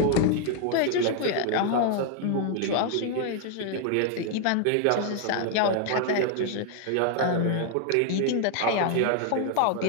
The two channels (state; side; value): different; both; correlation 0.00